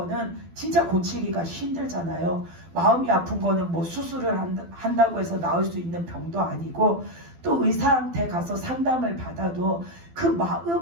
진짜 고치기가 힘들잖아요. 마음이 아픈 거는 뭐 수술을 한다고 해서 나을 수 있는 병도 아니고, 또 의사한테 가서 상담을 받아도 그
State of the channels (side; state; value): left; late; 12 ms